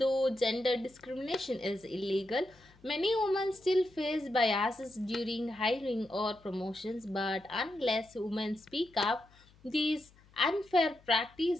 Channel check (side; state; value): left; noise; hum, 28 dB below the sound